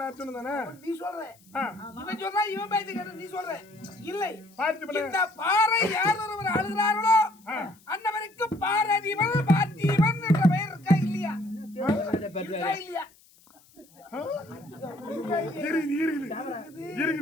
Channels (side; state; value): left; noise; hiss, 28 dB below the sound